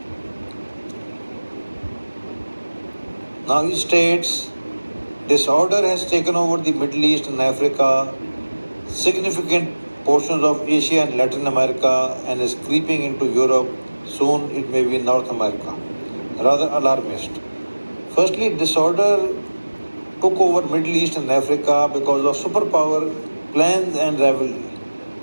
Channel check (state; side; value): inverted; both; correlation -1.00